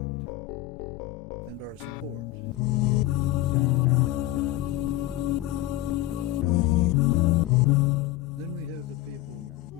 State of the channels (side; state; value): right; quieter; 15.5 dB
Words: and our support. Then we have the people